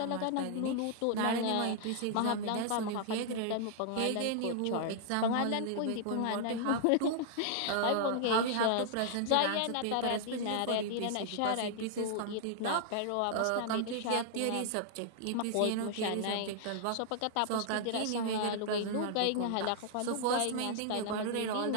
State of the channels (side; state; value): both; different; correlation -0.01